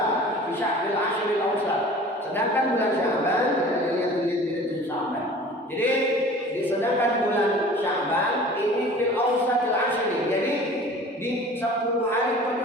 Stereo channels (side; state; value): both; normal; correlation 0.44